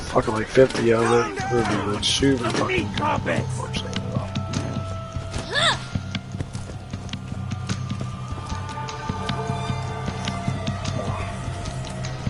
fucking like 50 out of it. It would be like super fucking good. Unfortunately.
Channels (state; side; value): identical; both; correlation 1.00